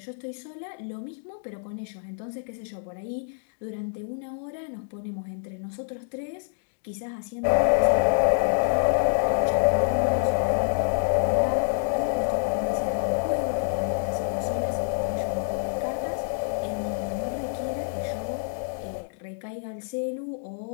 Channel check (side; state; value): right; silent; digital silence